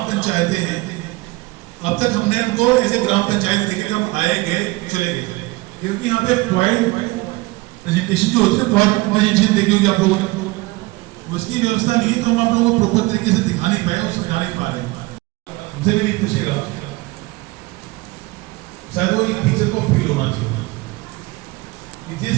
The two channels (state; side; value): quieter; left; 21.9 dB